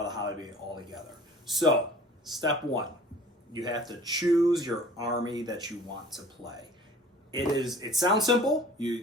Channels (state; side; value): normal; both; correlation 0.47